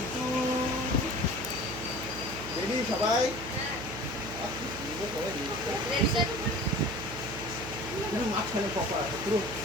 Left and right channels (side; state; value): right; noise; hum, 10 dB below the sound